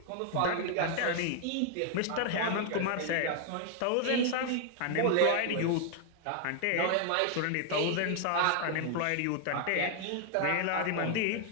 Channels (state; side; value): different; both; correlation 0.00